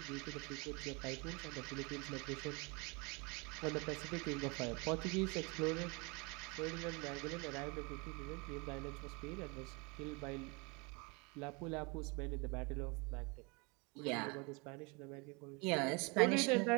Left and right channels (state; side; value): quieter; left; 29.3 dB